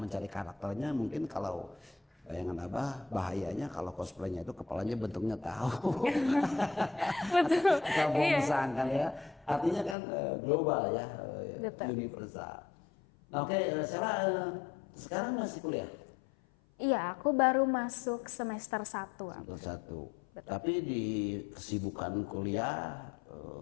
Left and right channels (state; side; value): drops out; right; at 10.0 s